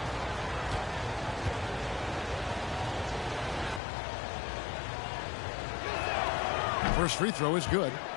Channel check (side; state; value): right; drops out; at 3.8 s